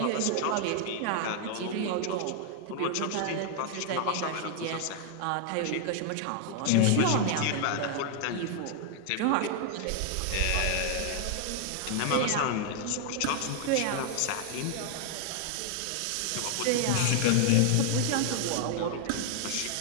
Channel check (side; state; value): both; different; correlation 0.00